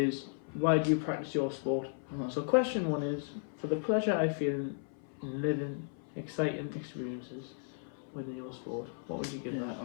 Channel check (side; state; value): right; silent; 55 dB below the other